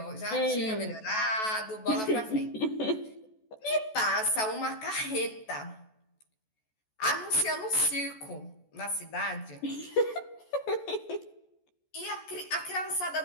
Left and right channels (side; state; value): right; late; 14 ms